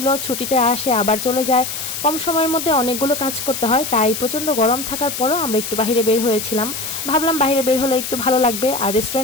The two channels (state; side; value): noise; left; hiss, 6 dB below the sound